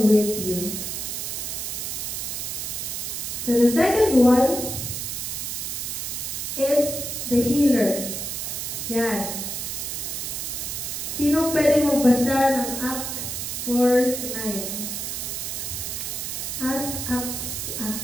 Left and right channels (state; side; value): noise; right; hiss, 4 dB below the sound